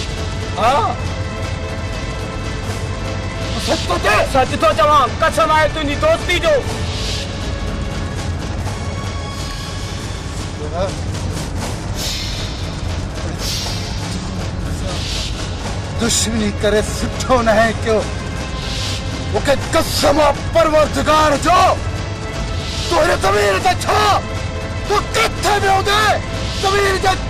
हाँ सच तो थे। सच तो चवा कसम आहे तुझी दोस्ती जो। दुश्मनी करे सुठो न है क्यों मुखे कसम परवरदिगार जो तोरे ज़मीर ते छा तू किथे में होदे ज़मीर जे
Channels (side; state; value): both; identical; correlation 1.00